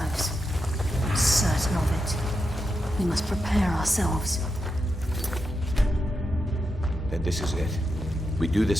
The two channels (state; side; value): normal; both; correlation 0.86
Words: I'm certain of it. We must prepare ourselves. Then this is it. We do